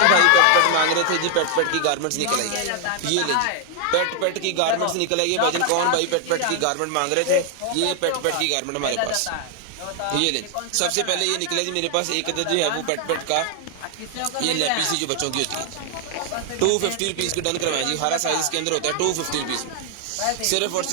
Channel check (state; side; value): different; both; correlation 0.00